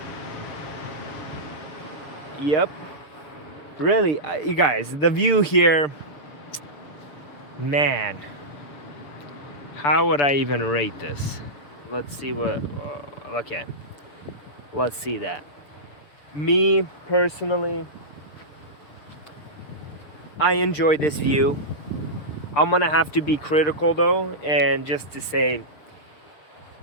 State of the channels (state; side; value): late; right; 6.9 ms